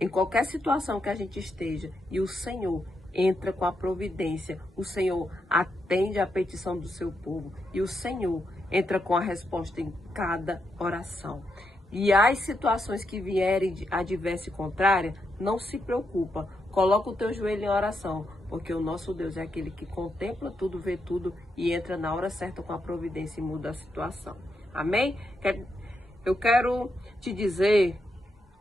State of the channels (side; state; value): both; normal; correlation 0.82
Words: em qualquer situação que a gente esteja, e o Senhor entra com a providência, o Senhor atende a petição do seu povo, e o Senhor entra com a resposta em cada oração. E as situações que vierem adversa e contrária, não se preocupa, coloca o teu joelho em oração, porque o nosso Deus é aquele que contempla tudo, vê tudo e entra na hora certa com a providência e muda a situação. Amém? Eu quero te dizer